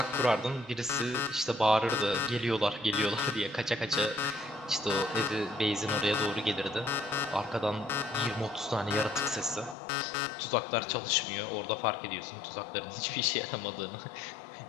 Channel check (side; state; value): right; drops out; at 9.8 s